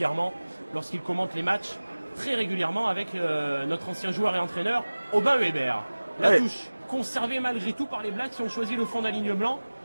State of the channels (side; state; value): both; inverted; correlation -1.00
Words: lorsqu'il commente les matchs, très régulièrement avec notre ancien joueur et entraîneur Aubin Weber. La touche conservée malgré tout par les Blacks qui ont choisi le fond d'aligne blanc